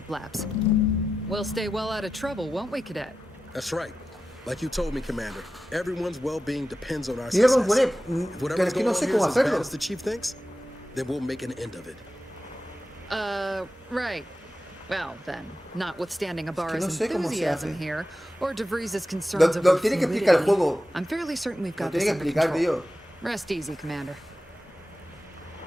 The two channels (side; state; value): both; normal; correlation 0.92